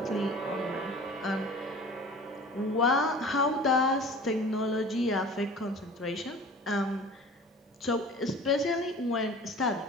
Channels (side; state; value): both; normal; correlation 0.42